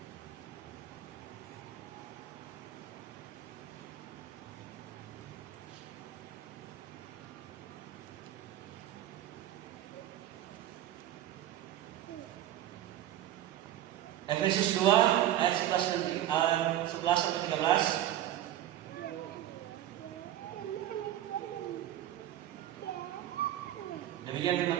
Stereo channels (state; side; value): quieter; left; 12.7 dB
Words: Efesus 2 ayat 11 sampai 13. Demikian